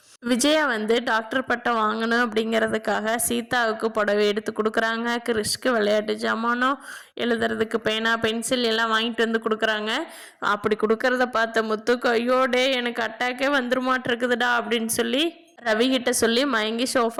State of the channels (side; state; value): both; identical; correlation 1.00